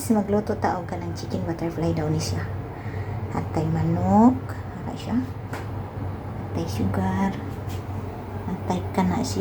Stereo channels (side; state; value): both; identical; correlation 1.00